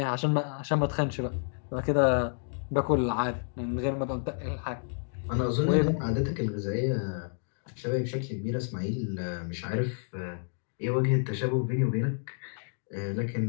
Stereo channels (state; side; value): silent; right; digital silence